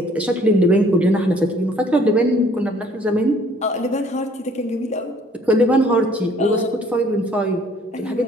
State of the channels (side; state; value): both; normal; correlation 0.59